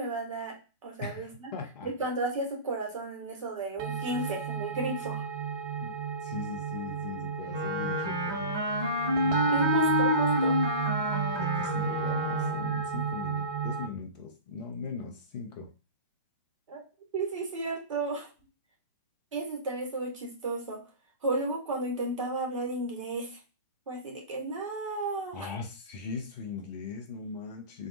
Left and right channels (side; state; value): both; inverted; correlation -0.31